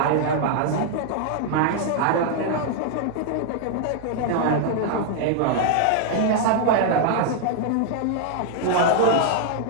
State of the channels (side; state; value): both; different; correlation -0.01